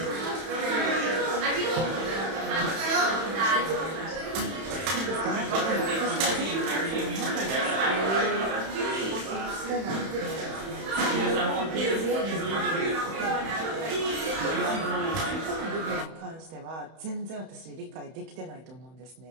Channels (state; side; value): late; left; 31 ms